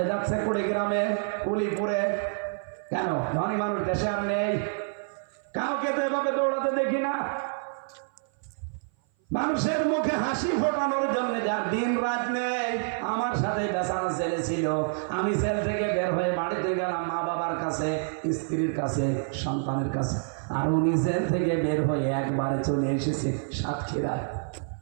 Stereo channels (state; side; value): silent; left; 56 dB below the other